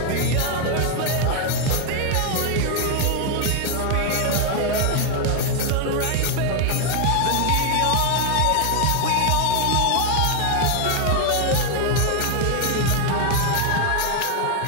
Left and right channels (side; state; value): both; different; correlation 0.01